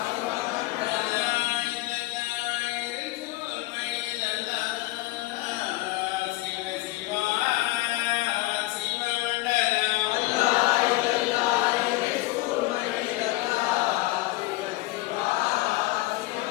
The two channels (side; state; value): right; quieter; 19.5 dB